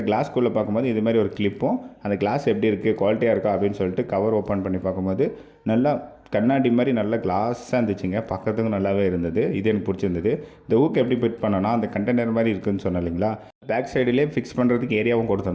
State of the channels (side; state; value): both; identical; correlation 1.00